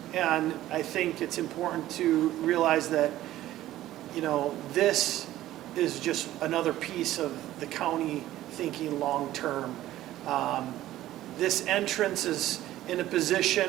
And I think it's important to realize that, this is just another piece of the county thinking long-term. This entrance is in a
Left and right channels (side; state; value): left; quieter; 14.4 dB